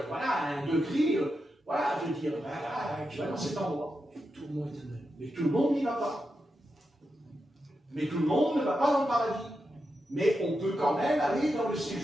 voilà, à un degré, voilà, je veux dire, voilà, tu vas dans cet endroit. Et tout le monde est étonné. Mais tout le monde n'y va pas. Mais tout le monde ne va pas dans le paradis. Mais on peut quand même aller dans le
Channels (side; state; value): both; normal; correlation 0.87